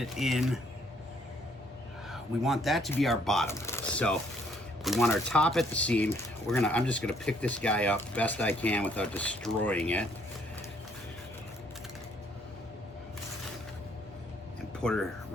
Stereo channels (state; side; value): normal; both; correlation 0.65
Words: in. We want that to be our bottom. So we want our top at the seam. I'm just gonna pick this guy up best I can without destroying it. And put her